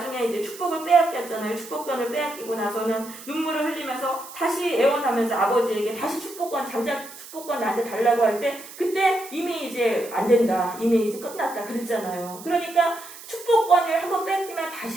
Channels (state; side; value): noise; right; hiss, 16 dB below the sound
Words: 이제 축복을 빼앗겼잖아요. 축복권을 빼앗기고 나서는 눈물을 흘리면서 다시 애원하면서 아버지에게 다시 장자 축복권 나한테 달라고 할 때 그때 이미 이제 안 된다. 이미 이제 끝났다. 그랬잖아요. 그러니까 축복권을 한번 뺏기면